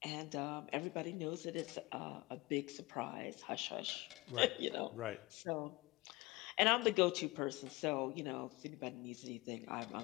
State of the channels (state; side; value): quieter; right; 22.7 dB